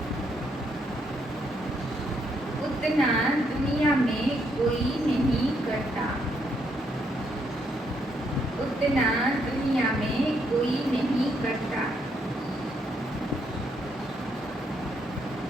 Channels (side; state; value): both; normal; correlation 0.74